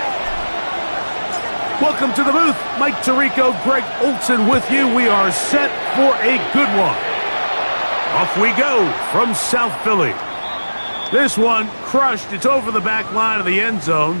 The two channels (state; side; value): inverted; both; correlation -1.00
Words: Welcome to the booth. Mike Tirico, Greg Olson with you. We are set for a good one. Off we go from South Philly. This one crushed. It's over the back line of the end zone.